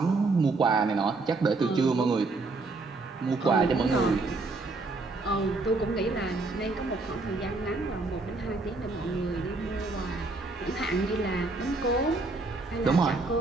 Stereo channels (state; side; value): quieter; left; 3.5 dB